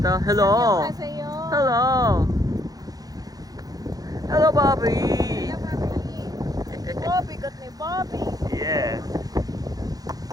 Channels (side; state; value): left; late; 0.18 ms